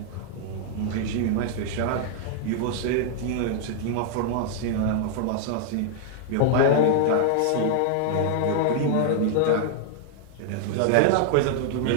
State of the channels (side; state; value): both; different; correlation -0.01